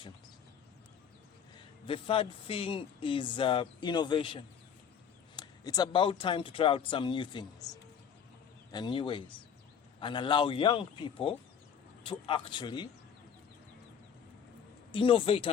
The third thing is innovation. It's about time to try out some new things and new ways and allow young people to actually innovate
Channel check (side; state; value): right; quieter; 7.7 dB